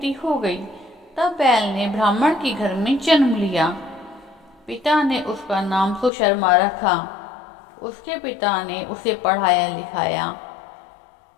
हो गई। तब बैल ने ब्राह्मण के घर में जन्म लिया। पिता ने उसका नाम सुशर्मा रखा। उसके पिता ने उसे पढ़ाया लिखाया।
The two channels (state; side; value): drops out; right; at 6.1 s